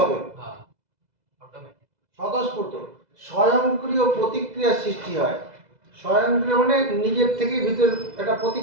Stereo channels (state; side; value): late; left; 2.0 ms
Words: স্বতঃস্ফূর্ত, স্বয়ংক্রিয় প্রতিক্রিয়া সৃষ্টি হয়, স্বয়ংক্রিয় মানে নিজের থেকে ভিতর একটা